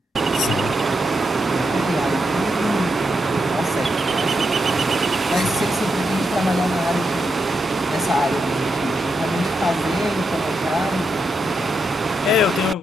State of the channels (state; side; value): normal; both; correlation 0.84